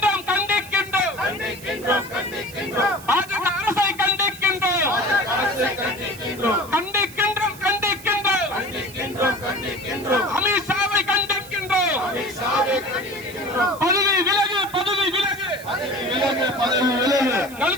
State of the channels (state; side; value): noise; right; hiss, 18 dB below the sound